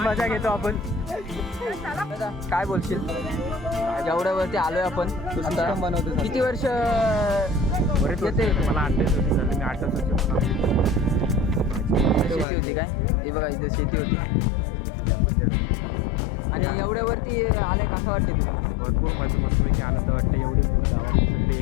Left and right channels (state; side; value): drops out; right; at 12.5 s